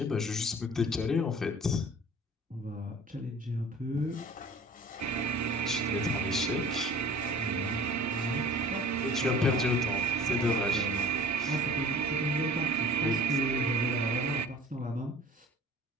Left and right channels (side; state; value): both; normal; correlation 0.46